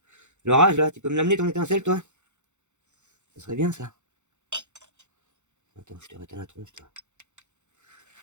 l'orage là, tu peux me l'amener ton étincelle toi? Ça serait bien ça. Attends, je te réteins la tronche toi.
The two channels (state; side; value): late; left; 0.84 ms